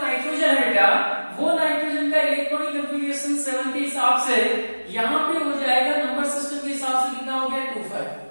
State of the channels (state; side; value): inverted; both; correlation -1.00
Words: नाइट्रोजन है बेटा, वो नाइट्रोजन का इलेक्ट्रॉनिक कॉन्फ़िगरेशन 7 के हिसाब से यहाँ पे हो जाएगा, नंबर सिस्टम के हिसाब से कितना हो गया, 25।